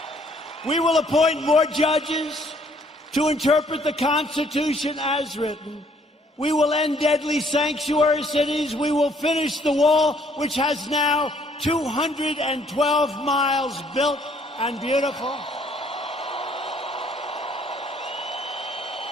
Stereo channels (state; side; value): normal; both; correlation 0.63